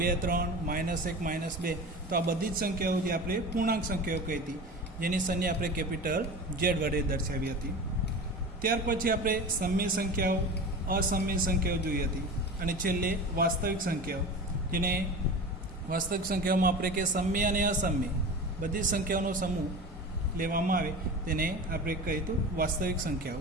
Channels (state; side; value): normal; both; correlation 0.32